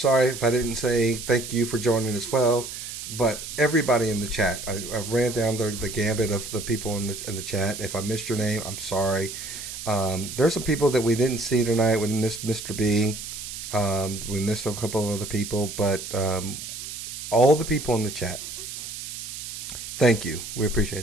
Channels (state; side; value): noise; right; hiss, 9 dB below the sound